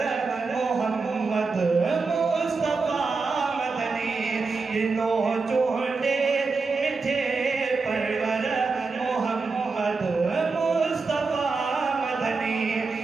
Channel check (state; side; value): quieter; left; 4.3 dB